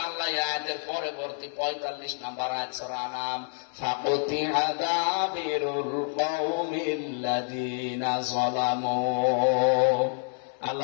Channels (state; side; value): silent; right; 55 dB below the other